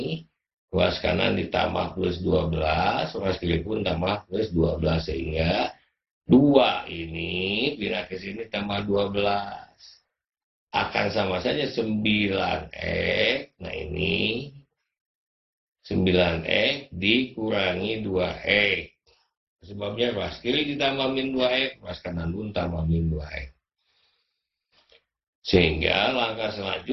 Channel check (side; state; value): both; identical; correlation 1.00